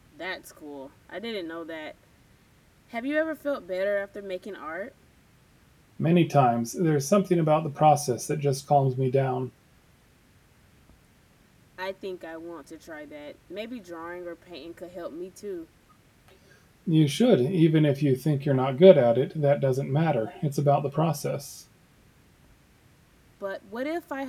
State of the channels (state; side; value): identical; both; correlation 1.00